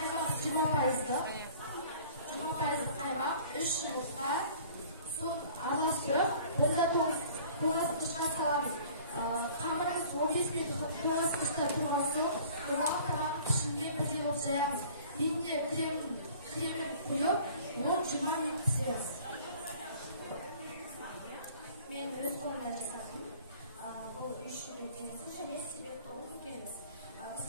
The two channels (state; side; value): inverted; both; correlation -0.49